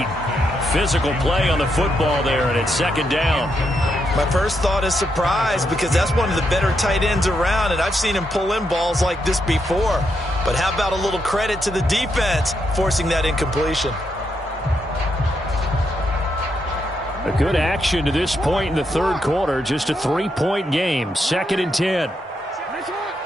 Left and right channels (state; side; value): normal; both; correlation 0.80